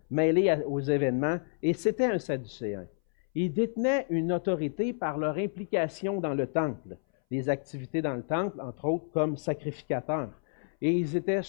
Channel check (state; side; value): silent; right; 58 dB below the other